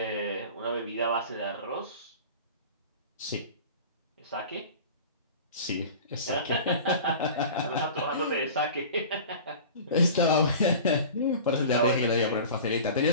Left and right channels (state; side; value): inverted; both; correlation -0.38